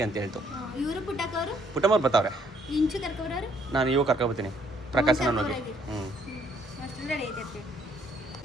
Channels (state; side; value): normal; both; correlation 0.66